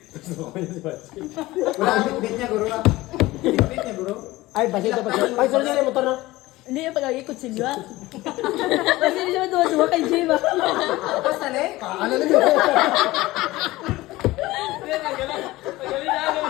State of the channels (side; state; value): right; quieter; 18.7 dB